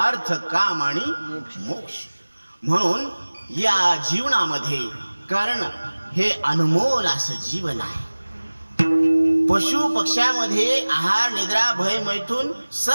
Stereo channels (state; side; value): inverted; both; correlation -1.00